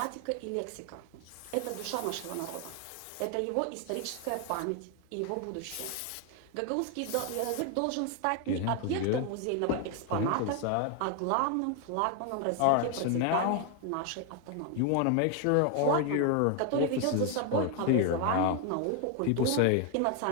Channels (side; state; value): both; different; correlation 0.01